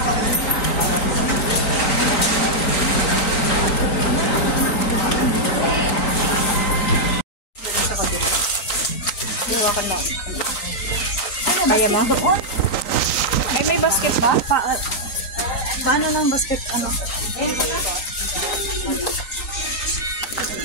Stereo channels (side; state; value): right; late; 3.9 ms